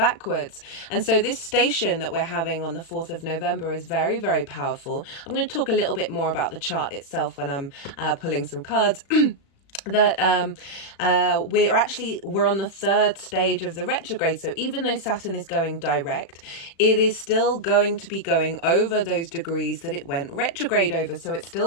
And so this station that we're having on the 4th of November is very, very powerful. I'm going to talk a little bit more about the chart itself when I'm pulling some cards. That we're on the 3rd stage of the retrograde. So even though Saturn is going direct, it is still going to be going over those degrees that it went retrograde over. So it's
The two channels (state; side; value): late; right; 36 ms